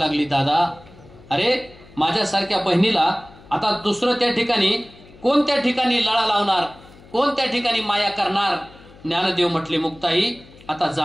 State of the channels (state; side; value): noise; left; hum, 23 dB below the sound